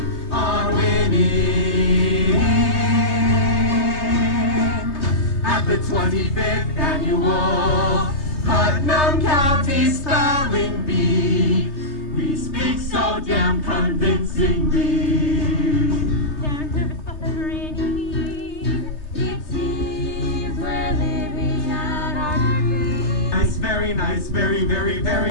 on winning. At the 25th Annual Putnam County Spelling Bee, we speak so damn convincingly. They're nervous but they're grinning. It seems we're living out our dreams. Nice, very nice, very, very, very,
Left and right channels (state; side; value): late; right; 3.3 ms